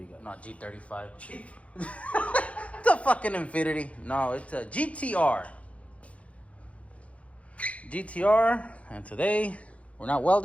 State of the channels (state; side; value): late; right; 0.064 ms